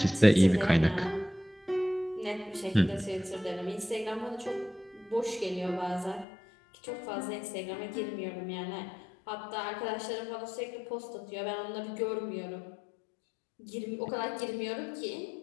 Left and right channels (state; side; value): drops out; right; at 6.2 s